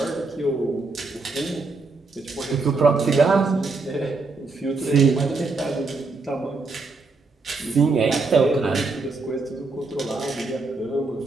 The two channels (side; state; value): left; quieter; 3.8 dB